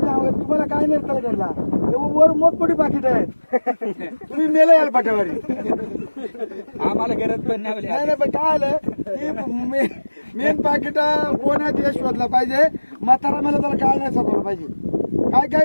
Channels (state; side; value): inverted; both; correlation -1.00